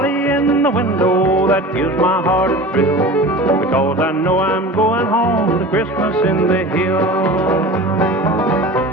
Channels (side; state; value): both; normal; correlation 0.35